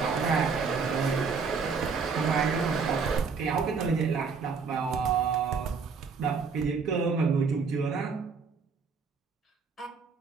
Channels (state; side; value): quieter; left; 5.2 dB